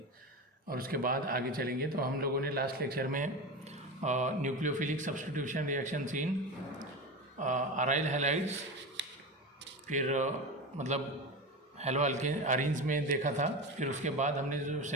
और उसके बाद आगे चलेंगे। तो हम लोगों ने लास्ट लेक्चर में nucleophilic substitution reaction in aryl halides, फिर मतलब हेलो अरेंज में देखा था। फिर उसके बाद हमने जो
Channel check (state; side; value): normal; both; correlation 0.23